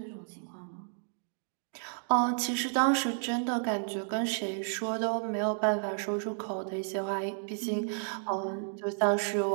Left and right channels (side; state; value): left; silent; digital silence